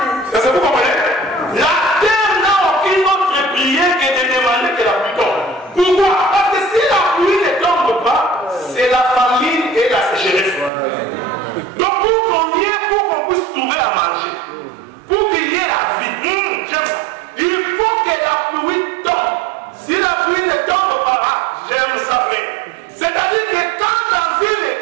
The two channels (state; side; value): drops out; left; at 10.7 s